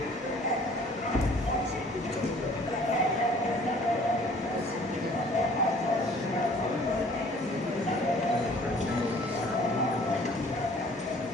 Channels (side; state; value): both; normal; correlation 0.53